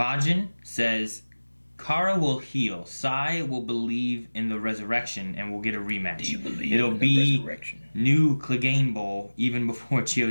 says Kara will heal. Sai will believe in the resurrection and will get a rematch. Do you believe It'll in be the resurrection? new Clegane Bowl even before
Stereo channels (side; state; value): both; inverted; correlation -1.00